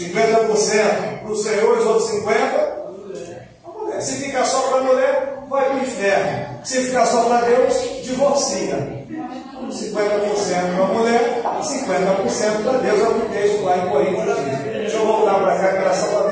para o Senhor, os outros 50% para a mulher. Se ficar só para a mulher, vai para o inferno. Se ficar só para Deus, divorcia. 50% para a mulher, 50% para Deus, é o que o texto lá em Coríntios diz. Deixa eu voltar para cá, que era só para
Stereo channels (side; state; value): both; identical; correlation 1.00